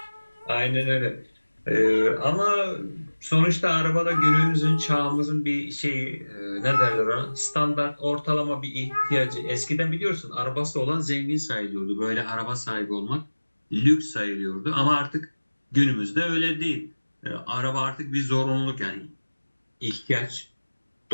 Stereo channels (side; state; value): both; inverted; correlation -1.00